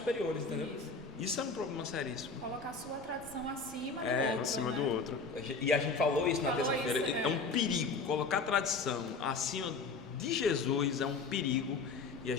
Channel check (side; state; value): right; quieter; 4.3 dB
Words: entendeu? Isso é um problema seríssimo. Colocar a sua tradição acima do É, outro. Acima né? do outro. E a gente falou isso na Falou terça-feira. isso, né? É um perigo. Colocar a tradição acima de Jesus é um perigo. E a